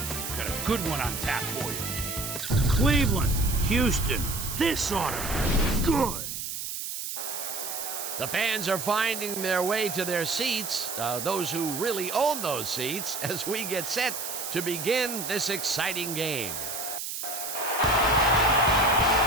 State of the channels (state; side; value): noise; right; hiss, 5 dB below the sound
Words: Got a good one on tap for you. Cleveland, Houston, this ought to be good. The fans are finding their way to their seats, those who really own those seats, as we get set to begin this exciting game.